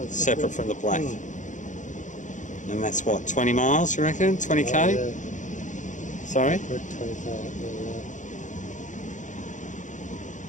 separate from the black. And that's what, 20 miles, you reckon? 20k? Oh, yeah. Sorry? Good 20k,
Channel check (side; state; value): right; late; 0.36 ms